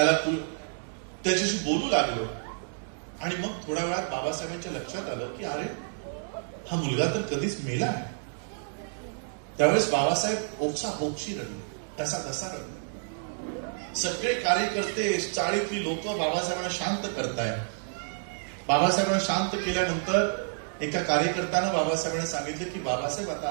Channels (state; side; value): silent; left; digital silence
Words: त्याच्याशी बोलू लागलो. आणि मग थोड्या वेळात बाबासाहेबांच्या लक्षात आलं की अरे हा मुलगा तर कधीच मेला आहे. त्यावेळेस बाबासाहेब ओक्साबोक्षी रडले, कसा रडले. सगळे कार्यकर्ते, चाळीतली लोक बाबासाहेबांना शांत करतायत. बाबासाहेबांना शांत केल्यानंतर एका कार्यकर्त्यानं बाबासाहेबांना सांगितलं की बाबासाहेब आता